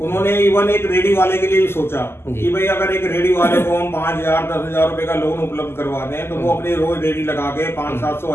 उन्होंने इवन एक रेडी वाले के लिए भी सोचा कि भाई अगर एक रेडी वाले को हम 5,000 10,000 रुपए का लोन उपलब्ध करवा दें तो वो अपने रोज रेडी लगा के 500-700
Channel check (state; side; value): late; right; 0.12 ms